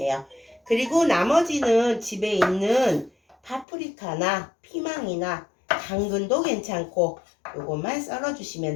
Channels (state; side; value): drops out; right; at 3.7 s